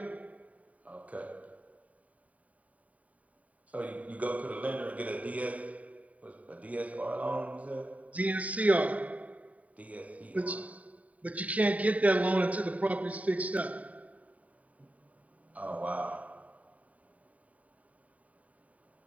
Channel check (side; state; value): left; late; 0.069 ms